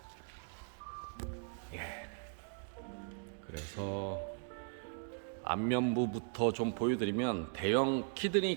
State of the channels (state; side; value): silent; left; 52 dB below the other